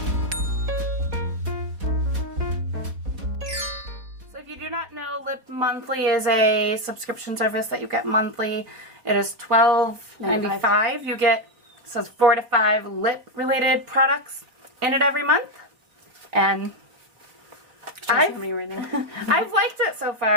If you do not know, Lip Monthly is a subscription service that you get monthly. It is $12.95. You get, it says 4 to 5 lip-related products in it every month. And I've liked it so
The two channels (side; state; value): left; late; 4.1 ms